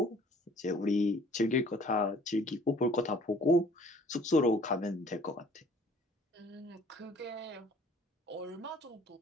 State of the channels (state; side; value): normal; both; correlation 0.55